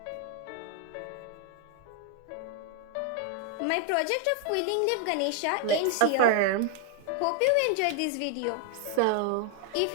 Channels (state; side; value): different; both; correlation 0.00